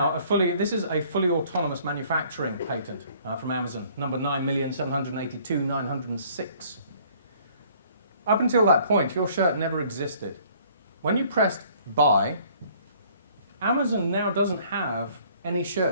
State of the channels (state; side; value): inverted; both; correlation -0.58